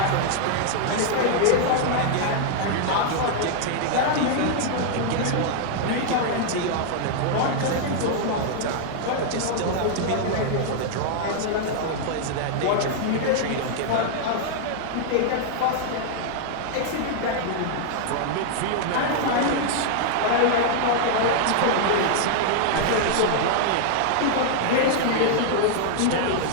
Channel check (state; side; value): different; both; correlation -0.01